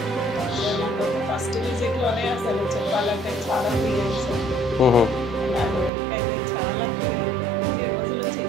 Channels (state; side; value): drops out; left; at 5.9 s